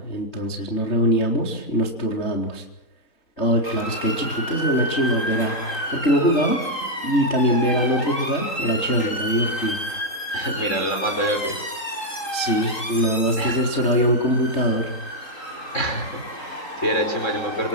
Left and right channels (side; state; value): right; late; 3.8 ms